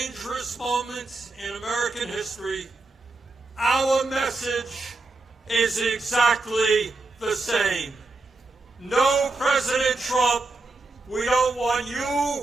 moment in American history, our message is exactly the same. No, President Trump, we don't want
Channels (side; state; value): left; quieter; 3.3 dB